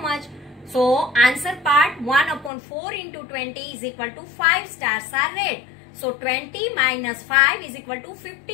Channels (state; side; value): drops out; right; at 2.5 s